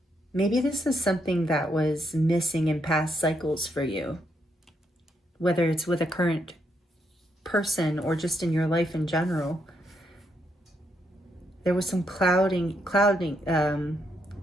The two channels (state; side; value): normal; both; correlation 0.77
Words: Maybe this is something that was missing in past cycles for you, whether it's with a current person or just in your life in general. There was some clouding in